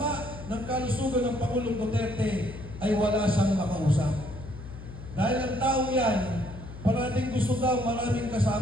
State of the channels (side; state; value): left; noise; hum, 13 dB below the sound